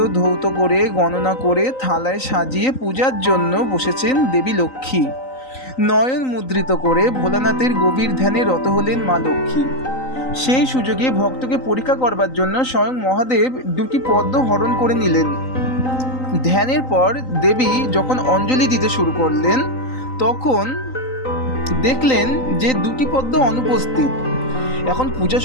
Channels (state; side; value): late; right; 3.9 ms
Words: ধৌত করে গণনা করে থালায় সাজিয়ে পূজার জন্য বসেছেন দেবী লক্ষ্মী। নয়ন মুদ্রিত করে ভোলানাথের গভীর ধ্যানে রত হলেন মা লক্ষ্মী। সেই সুযোগে ভক্তকে পরীক্ষা করবার জন্য স্বয়ং মহাদেব 2টি পদ্ম হরণ করে নিলেন। ধ্যানের পর দেবী যখন অঞ্জলি দিতে শুরু করলেন, তখন দেখলেন যে 2টি পদ্ম অনুপস্থিত। এখন পূজা